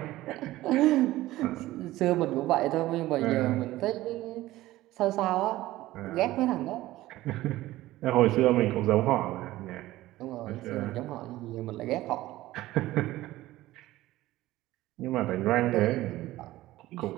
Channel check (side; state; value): left; quieter; 16.6 dB